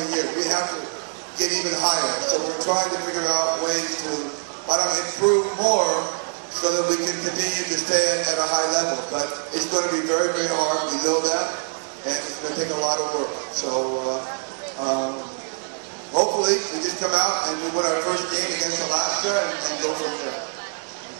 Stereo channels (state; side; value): silent; left; 60 dB below the other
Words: year. We have to get even higher. So we're trying to figure out ways to improve more so that we can continue to stay at a high level. But it's going to be very, very hard. We know that. And it's going to take a lot of work. So hopefully we just come out and we win our first game against Alaska and go from there.